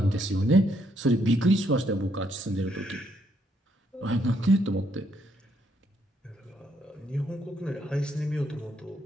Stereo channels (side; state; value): both; normal; correlation 0.73